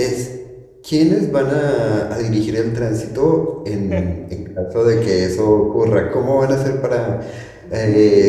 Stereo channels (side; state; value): both; identical; correlation 1.00